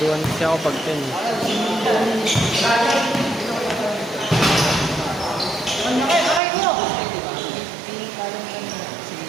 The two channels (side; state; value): left; drops out; at 6.4 s